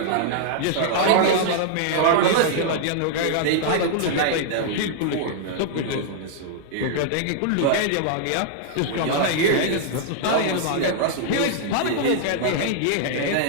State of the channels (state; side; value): different; both; correlation -0.01